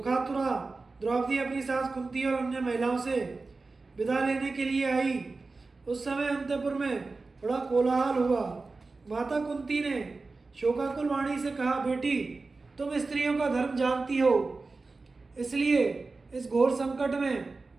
द्रौपदी अपनी सास कुंती और अन्य महिलाओं से विदा लेने के लिए आई, उस समय अंतपुर में बड़ा कोलाहल हुआ। माता कुंती ने शोकाकुल वाणी से कहा, बेटी, तुम स्त्रियों का धर्म जानती हो, इसलिए इस घोर संकट में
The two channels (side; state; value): left; quieter; 3.8 dB